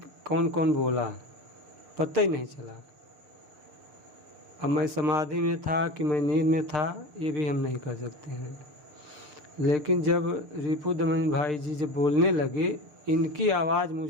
कौन कौन बोला, पता ही नहीं चला। अब मैं समाधि में था कि मैं नींद में था, ये भी हम नहीं कर सकते हैं। लेकिन जब रिपु दमन भाई जी जब बोलने लगे, इनकी आवाज़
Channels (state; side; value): late; left; 6.6 ms